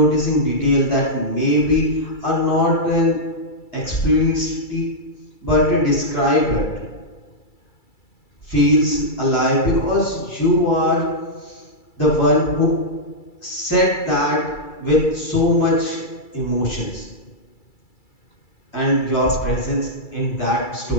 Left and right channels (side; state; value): right; late; 2.3 ms